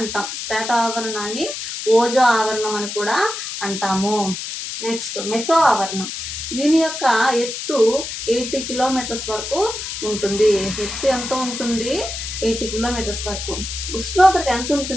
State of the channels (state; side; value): noise; left; hiss, 6 dB below the sound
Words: స్ట్రాటో ఆవరణాన్ని ఓజో ఆవరణం అని కూడా అంటాము. నెక్స్ట్, మెసో ఆవరణం. దీని యొక్క ఎత్తు 80 కిలోమీటర్స్ వరకు ఉంటుంది. ఎత్తు ఎంత ఉంటుంది? 80 కిలోమీటర్స్ వరకు. ఉష్ణోగ్రత ఎంత